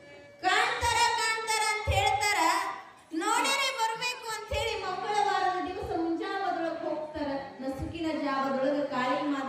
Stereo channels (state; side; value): identical; both; correlation 1.00